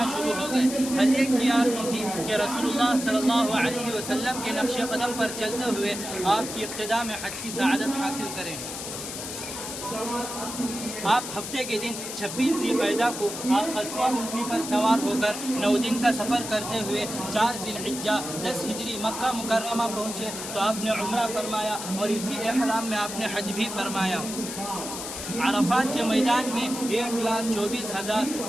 شروع ہو گئے. ہر ایک کی آرزو تھی کہ رسول اللہ صلی اللہ علیہ وسلم کے نقش قدم پر چلتے ہوئے آپ کی اقتداء میں حج کی سعادت حاصل کریں. آپ ہفتے کے دن 26 ذی القعدہ کو آپ قصوہ اونٹنی پر سوار ہو کر 9 دن کا سفر کرتے ہوئے 4 ذی الحجہ 10 ہجری مکہ مکرمہ پہنچے تو آپ نے عمرہ فرمایا اور اسی احرام میں آپ نے حج بھی فرمایا۔ عرفات کے میدان میں 1,24,000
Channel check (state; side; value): noise; left; hiss, 7 dB below the sound